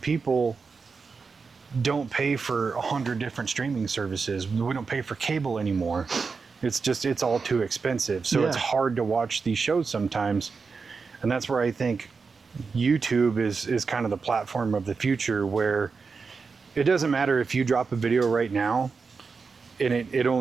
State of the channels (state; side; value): quieter; left; 4.9 dB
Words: people don't pay for 100 different streaming services. We don't pay for cable anymore. It's all too expensive. So it's hard to watch these shows sometimes. And that's where I think YouTube is kind of the platform of the future, where it doesn't matter if you drop a video right now and it